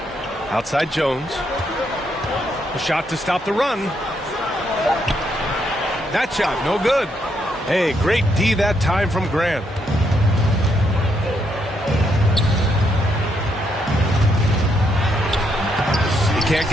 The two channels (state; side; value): normal; both; correlation 0.76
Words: Outside Jones. A shot to stop the run. That shot, no good. Hey, great D that time from Grant. He can't